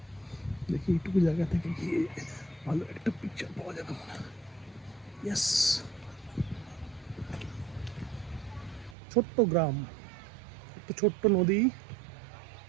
দেখি এইটুকু জায়গা থেকে গিয়ে ভালো একটা পিকচার পাওয়া যাবে মনে হয়। ইয়েস, ছোট্ট গ্রাম, একটা ছোট্ট নদী,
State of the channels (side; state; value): left; drops out; at 9.0 s